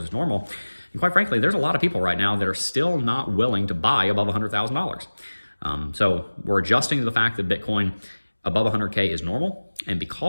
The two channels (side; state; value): both; inverted; correlation -1.00